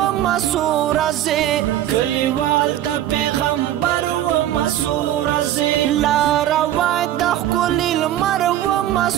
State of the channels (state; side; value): quieter; left; 12.5 dB